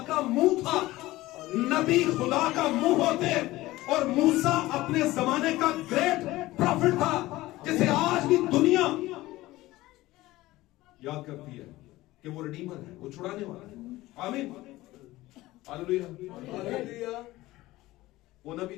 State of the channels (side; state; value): right; quieter; 17.9 dB